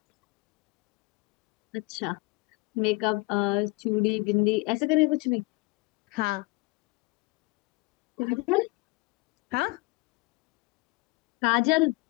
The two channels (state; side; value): quieter; right; 24.7 dB